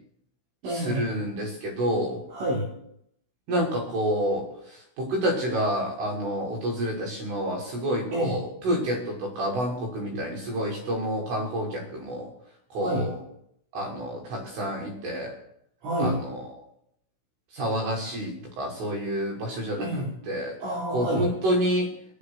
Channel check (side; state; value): left; late; 16 ms